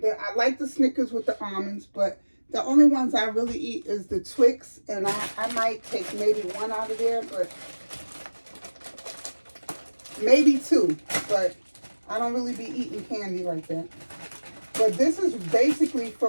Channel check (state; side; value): inverted; both; correlation -1.00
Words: like the Snickers with the almonds, but the only ones I really eat is the Twix, and I might take maybe 1 out of there, but maybe 2, but I don't really be eating candy like that. But this is basically